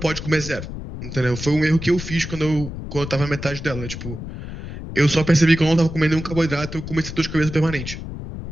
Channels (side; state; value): left; noise; rumble, 9 dB below the sound